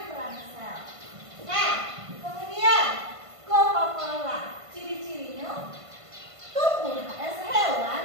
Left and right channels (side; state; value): left; late; 1.5 ms